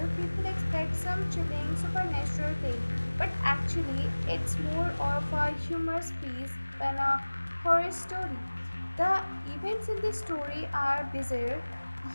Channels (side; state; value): both; inverted; correlation -1.00